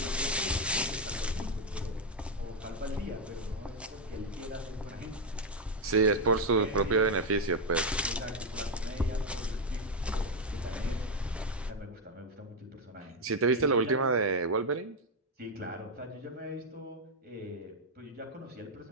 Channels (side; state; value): both; normal; correlation 0.04